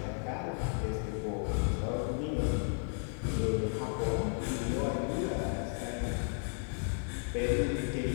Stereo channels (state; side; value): silent; right; 55 dB below the other